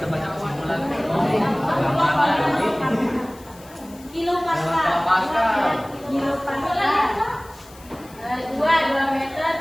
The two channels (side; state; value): left; noise; hiss, 23 dB below the sound